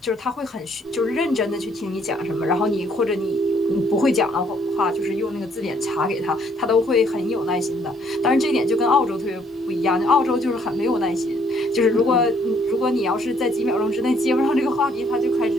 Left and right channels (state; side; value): normal; both; correlation 0.66